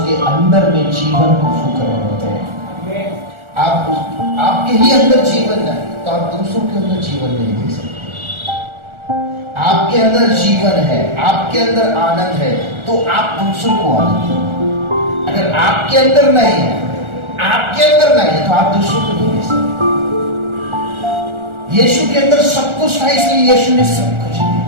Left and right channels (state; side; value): late; left; 1.4 ms